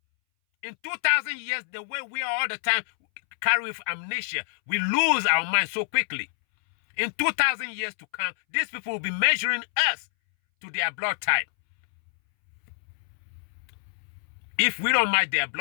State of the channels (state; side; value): silent; right; 60 dB below the other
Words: In 2,000 years, the way we are all the time carry with amnesia, we lose our mind so quickly. In 2,000 years to come, these people will be measuring us to their blood type. If we don't match their